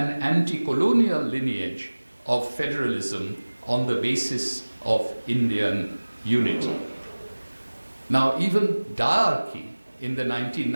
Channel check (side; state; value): both; inverted; correlation -1.00